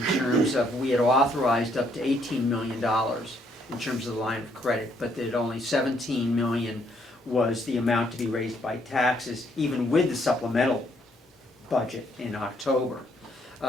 terms of, we had authorized up to $18 million in terms of the line of credit, but that only $17 million was the amount to be raised by taxes, even with the supplemental budget in October.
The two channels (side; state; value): both; normal; correlation 0.70